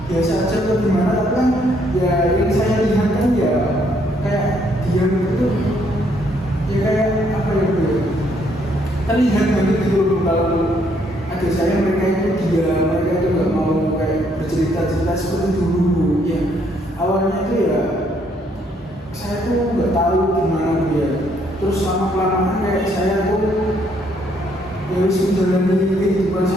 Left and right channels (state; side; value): normal; both; correlation 0.69